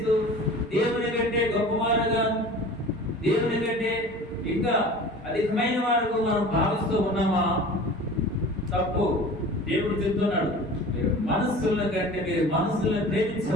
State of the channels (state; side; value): normal; both; correlation 0.40